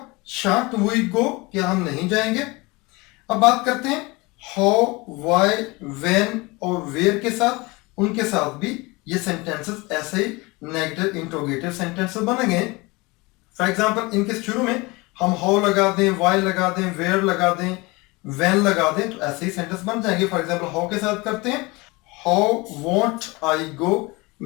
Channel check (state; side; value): quieter; right; 24.4 dB